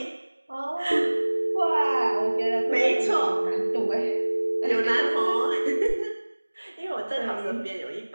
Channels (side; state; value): both; inverted; correlation -1.00